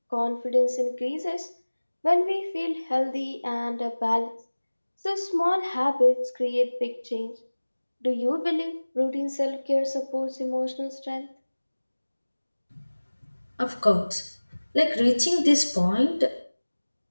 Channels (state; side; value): inverted; both; correlation -1.00